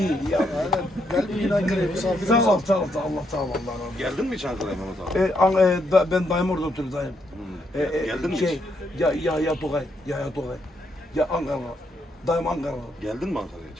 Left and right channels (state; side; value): normal; both; correlation 0.76